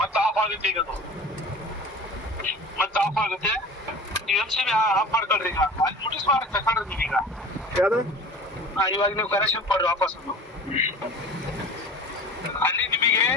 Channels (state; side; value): normal; both; correlation 0.39